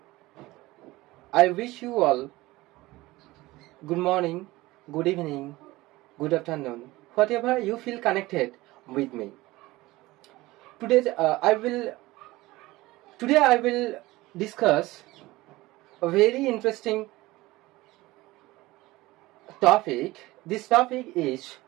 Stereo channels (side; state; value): left; quieter; 19.3 dB